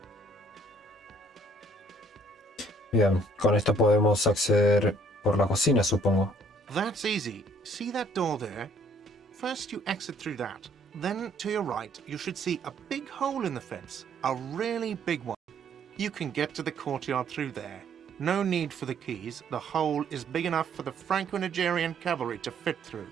Bien, con esto podemos acceder por la cocina, supongo. That's easy. See that door there? First you exit through that. Then to your right, you should see a big hole in the fence. A really big one. You can get to the courtyard through there. No need for the keys. The hole is big enough for the Franco-Nigerian cavalry to fit through.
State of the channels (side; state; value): both; normal; correlation 0.62